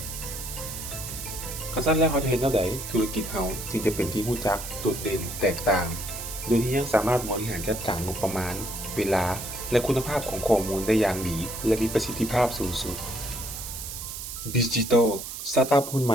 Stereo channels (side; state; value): right; noise; hiss, 8 dB below the sound